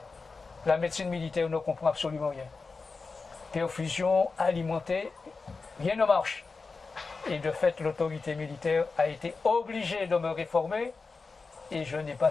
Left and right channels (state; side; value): quieter; right; 4.3 dB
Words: la médecine militaire ne comprend absolument rien. Perfusion, alimentée, rien ne marche. Et de fait, l'autorité militaire a été obligée de me réformer, et je n'ai